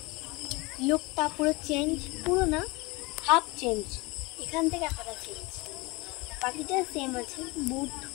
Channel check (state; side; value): quieter; right; 24.5 dB